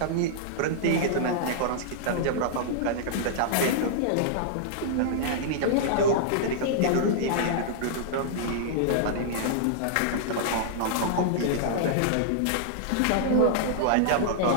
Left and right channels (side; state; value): both; different; correlation -0.02